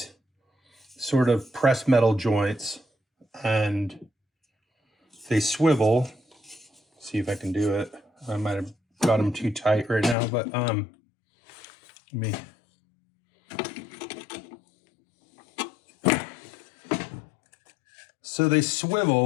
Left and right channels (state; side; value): drops out; right; at 10.2 s